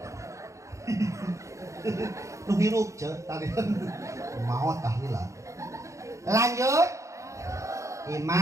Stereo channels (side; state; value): left; late; 0.15 ms